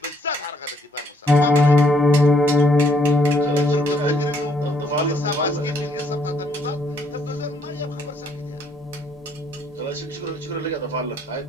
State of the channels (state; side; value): normal; both; correlation 0.68